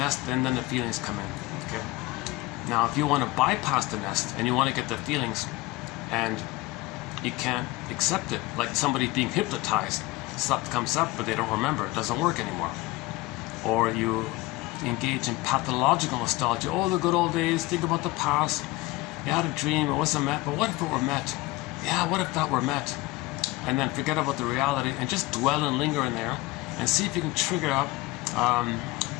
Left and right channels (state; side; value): quieter; right; 20.1 dB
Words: and then the feelings come in. Okay. Now, if you want to bypass the nest and you want to get the feelings, and you can't accept it, like somebody being hypnotized, stuff comes up, but they don't remember. It doesn't work anymore. Or you engage in pathological nostalgia. Oh, the good old days. Think about the past. You had a dream. It wasn't met. But what if it were met? Yeah, what if that were met? And then forget about the reality and just dwell and linger in there, and see if you can trigger up